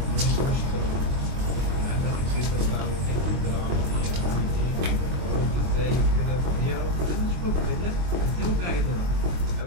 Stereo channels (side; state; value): left; late; 23 ms